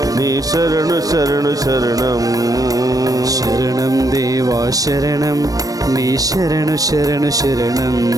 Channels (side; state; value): left; late; 0.18 ms